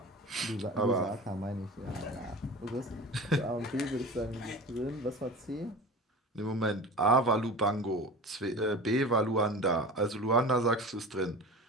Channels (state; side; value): normal; both; correlation 0.35